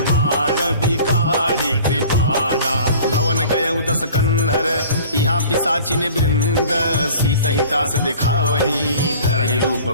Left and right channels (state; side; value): inverted; both; correlation -0.46